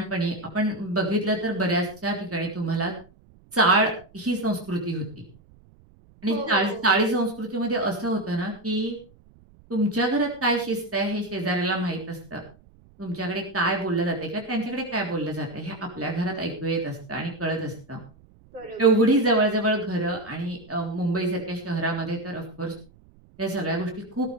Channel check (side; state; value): right; noise; rumble, 27 dB below the sound